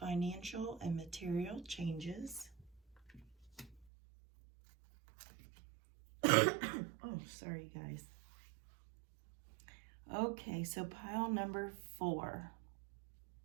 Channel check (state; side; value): drops out; left; at 3.9 s